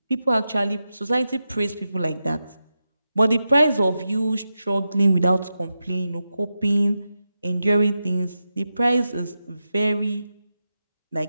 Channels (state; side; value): inverted; both; correlation -0.90